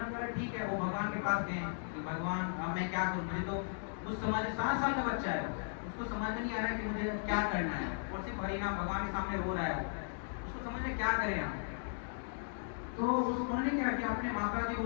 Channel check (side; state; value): right; silent; digital silence